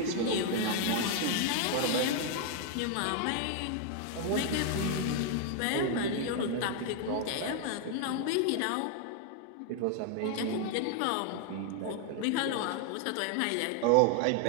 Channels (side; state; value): both; different; correlation 0.00